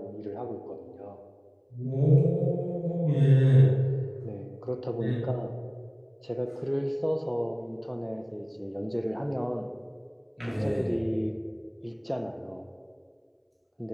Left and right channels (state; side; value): identical; both; correlation 1.00